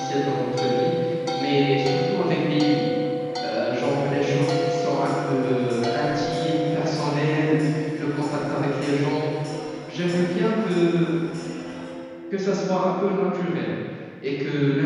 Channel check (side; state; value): both; identical; correlation 1.00